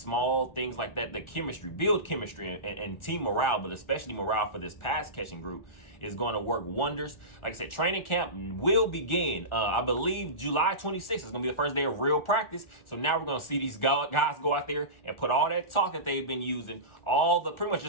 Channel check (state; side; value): late; right; 1.4 ms